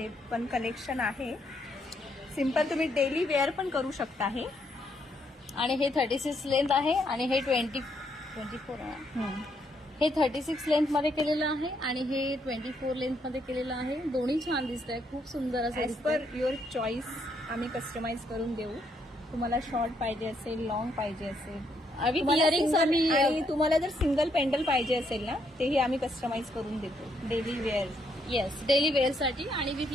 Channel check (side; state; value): both; normal; correlation 0.74